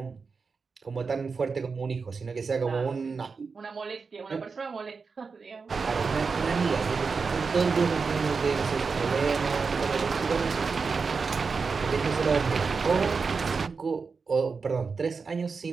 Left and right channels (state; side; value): quieter; left; 4.9 dB